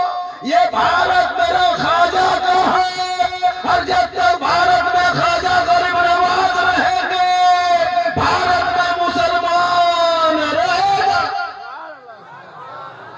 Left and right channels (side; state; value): both; identical; correlation 1.00